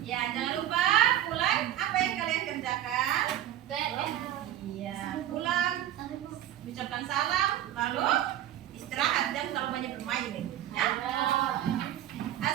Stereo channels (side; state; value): left; quieter; 12.0 dB